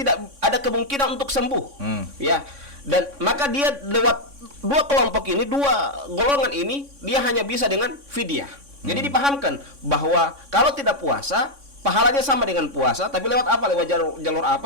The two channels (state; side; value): late; left; 3.6 ms